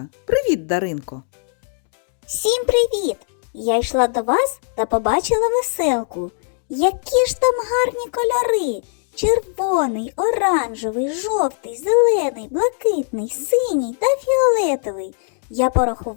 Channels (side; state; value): right; silent; digital silence